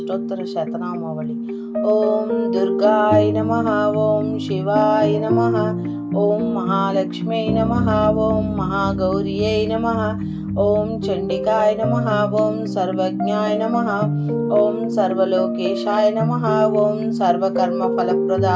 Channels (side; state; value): both; identical; correlation 1.00